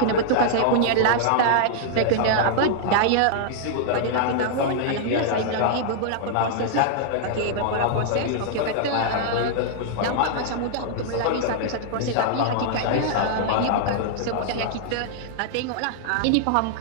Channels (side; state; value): both; different; correlation -0.01